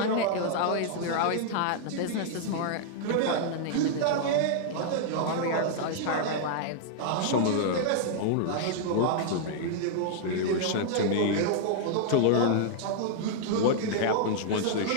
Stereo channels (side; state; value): both; different; correlation -0.01